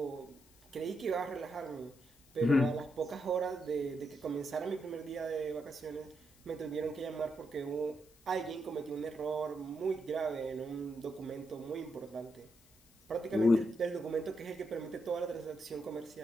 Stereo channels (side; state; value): left; noise; hiss, 28 dB below the sound